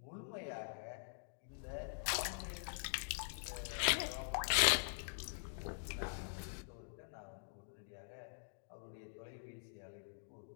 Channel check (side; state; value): right; silent; digital silence